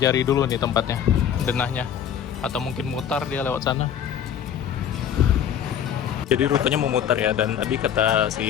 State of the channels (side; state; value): right; quieter; 9.0 dB